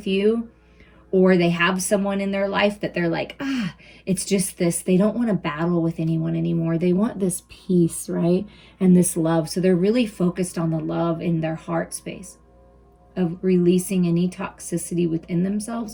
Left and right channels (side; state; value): both; identical; correlation 1.00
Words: you, or they have someone in their life that they're like, it's just this, they don't want to battle with anyone anymore. They want this peace, right? And this love. So they're really focused on the love in their heart space of releasing any toxicity within